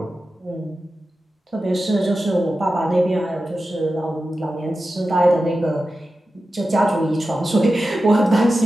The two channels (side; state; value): both; normal; correlation 0.92